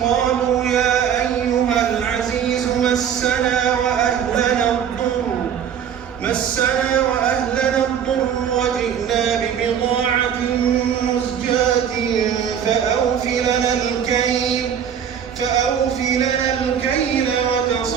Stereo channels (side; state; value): left; quieter; 8.4 dB